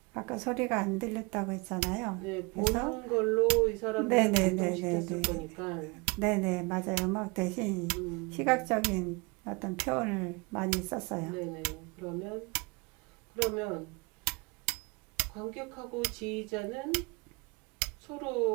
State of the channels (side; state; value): left; quieter; 28.6 dB